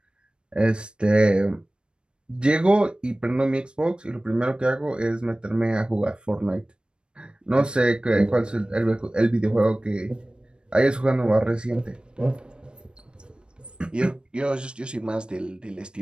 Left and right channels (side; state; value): left; late; 0.054 ms